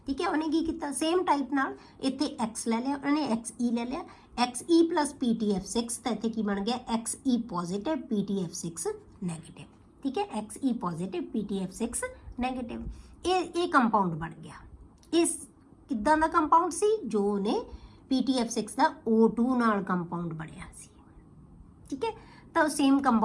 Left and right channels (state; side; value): identical; both; correlation 1.00